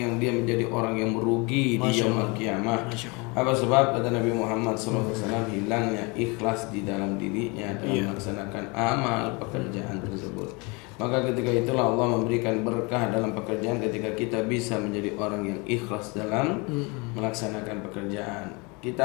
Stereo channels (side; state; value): right; quieter; 28.8 dB